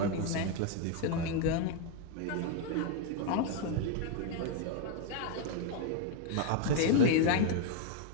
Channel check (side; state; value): both; different; correlation 0.01